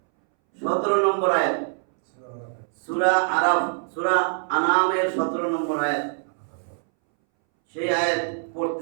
17 নম্বর আয়াত, সূরা আরাফ, সূরা আনামের 17 নম্বর আয়াত, সেই আয়াত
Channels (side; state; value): left; silent; 63 dB below the other